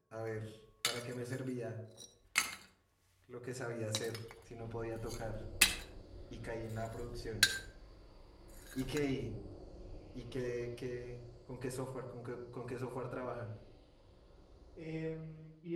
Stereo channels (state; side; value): identical; both; correlation 1.00